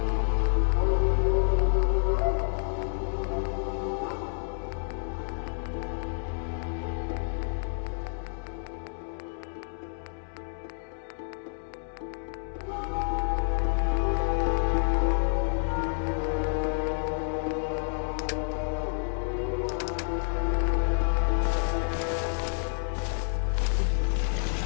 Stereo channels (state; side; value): silent; right; 58 dB below the other